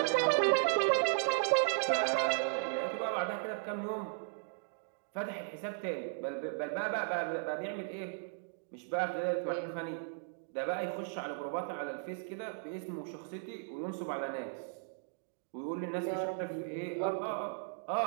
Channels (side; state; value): left; silent; digital silence